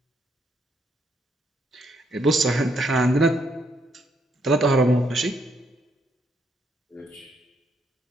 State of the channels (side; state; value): both; normal; correlation 0.74